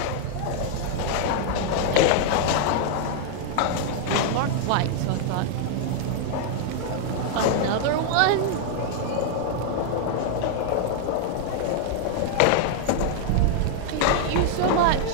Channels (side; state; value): both; different; correlation -0.01